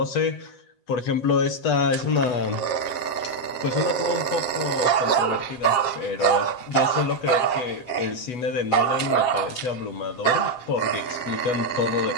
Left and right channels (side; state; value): right; late; 7.5 ms